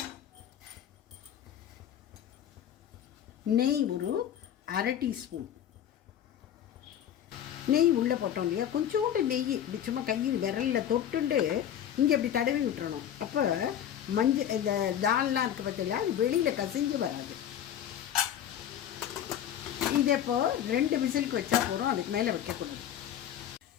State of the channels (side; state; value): right; quieter; 10.1 dB